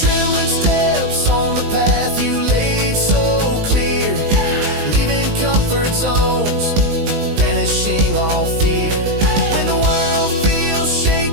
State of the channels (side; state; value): left; late; 19 ms